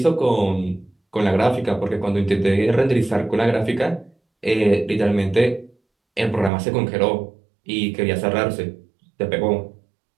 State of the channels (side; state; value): left; drops out; at 6.5 s